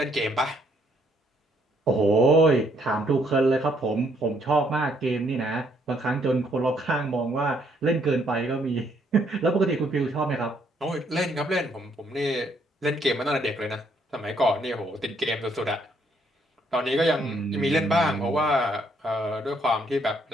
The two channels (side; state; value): both; normal; correlation 0.69